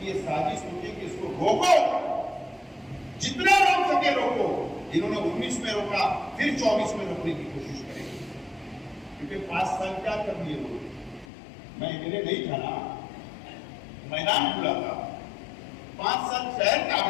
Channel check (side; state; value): right; drops out; at 11.2 s